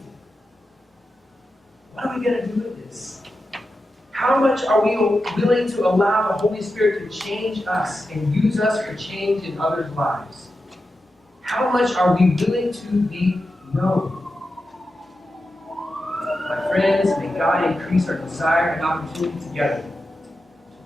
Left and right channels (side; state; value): both; normal; correlation 0.90